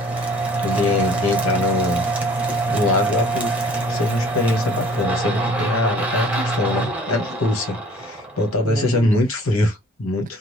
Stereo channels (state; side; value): normal; both; correlation 0.53